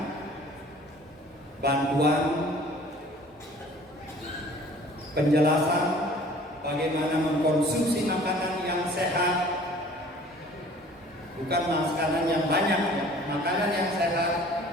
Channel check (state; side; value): normal; both; correlation 0.50